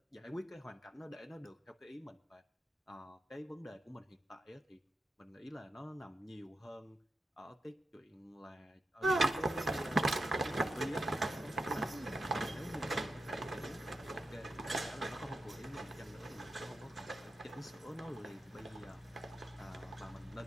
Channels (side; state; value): both; normal; correlation 0.88